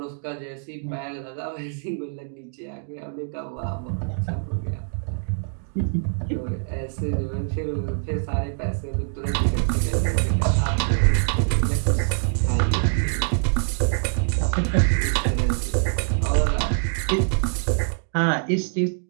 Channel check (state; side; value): silent; left; digital silence